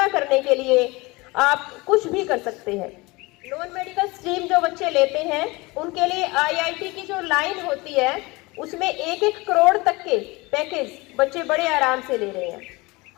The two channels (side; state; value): right; quieter; 23.7 dB